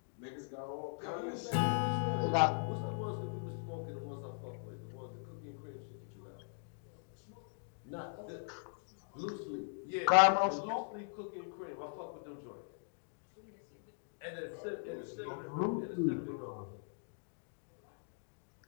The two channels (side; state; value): right; silent; digital silence